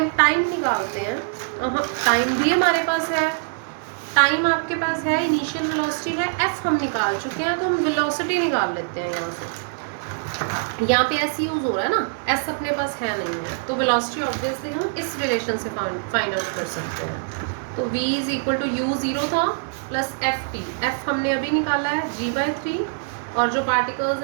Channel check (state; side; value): silent; left; digital silence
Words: टाइम निकालते हैं। टाइम भी हमारे पास है, टाइम आपके पास है, इनिशियल वेलोसिटी है, f हम निकाल चुके हैं, तो हम वेलोसिटी निकाल लेते हैं यहाँ से। यहाँ पे s यूज हो रहा है ना, s अपने पास है नहीं है, तो वेलोसिटी ऑब्वियसली हम इस रिलेशन से फाइंड आउट कर सकते हैं। तो v is equal to u 0 था प्लस एफ टी, एफ हमने अभी निकाला है g/3, और जो पार्टिकल्स